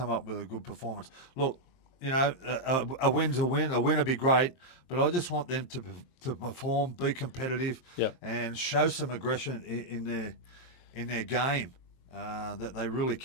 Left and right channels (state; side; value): late; right; 23 ms